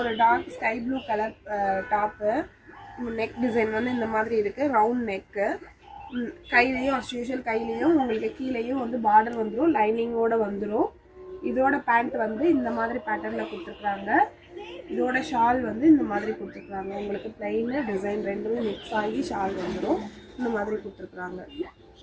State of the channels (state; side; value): identical; both; correlation 1.00